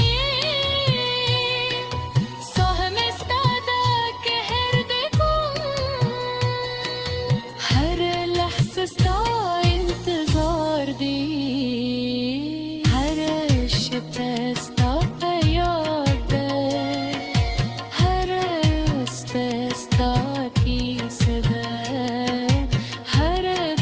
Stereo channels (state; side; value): identical; both; correlation 1.00